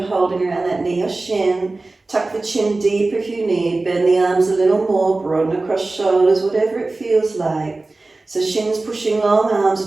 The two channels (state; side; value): quieter; left; 3.2 dB